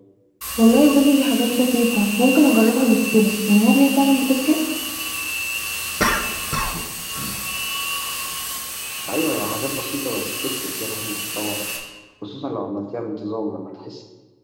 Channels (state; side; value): identical; both; correlation 1.00